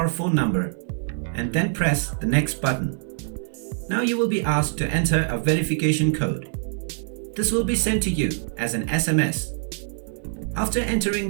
phone number and then press the Next button. Now you will be asked to enter a verification code. This will be sent to you as an SMS. After entering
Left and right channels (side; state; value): left; silent; 62 dB below the other